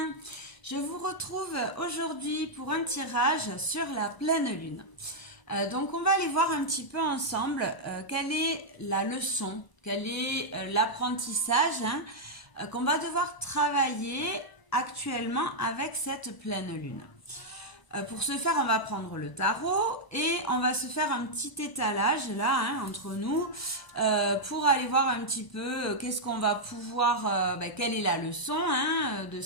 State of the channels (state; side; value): late; right; 1.0 ms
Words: Je vous retrouve aujourd'hui pour un tirage sur la pleine lune. Donc on va aller voir un petit peu ensemble quelle est la leçon, quel est l'apprentissage qu'on va devoir travailler actuellement avec cette pleine lune. Pour ce faire, on va prendre le tarot et on va se faire un petit étalage là entre nous pour aller voir un petit peu qu'est-ce qu'on va pouvoir, quelle est la leçon de